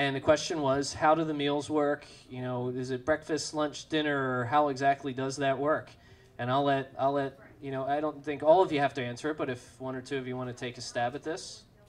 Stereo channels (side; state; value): both; identical; correlation 1.00